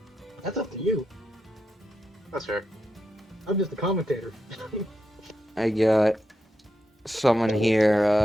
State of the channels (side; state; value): both; normal; correlation 0.86